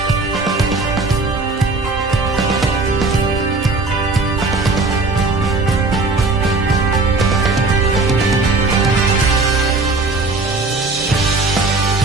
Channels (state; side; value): quieter; left; 3.5 dB